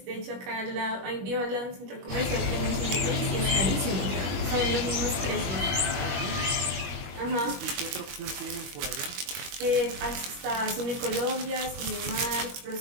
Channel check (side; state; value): left; late; 22 ms